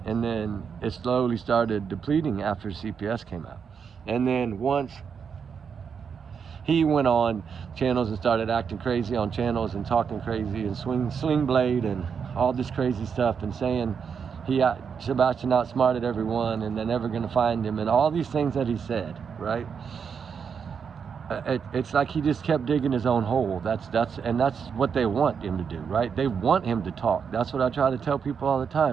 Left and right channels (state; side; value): quieter; left; 6.6 dB